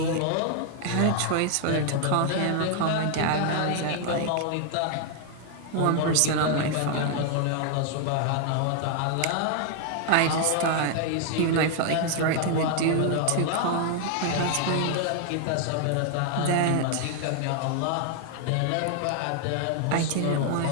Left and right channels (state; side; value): different; both; correlation 0.00